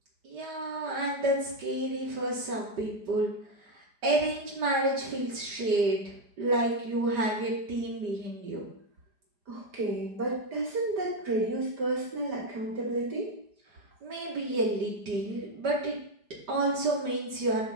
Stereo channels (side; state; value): left; late; 5.0 ms